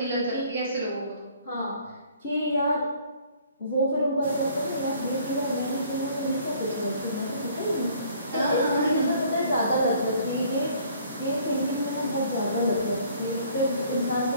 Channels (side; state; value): both; inverted; correlation -0.57